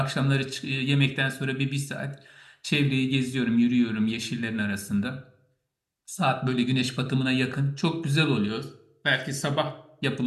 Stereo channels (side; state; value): both; identical; correlation 1.00